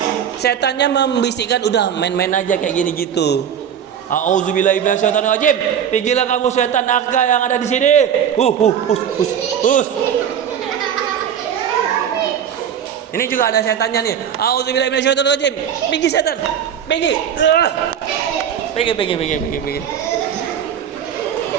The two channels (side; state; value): left; quieter; 8.7 dB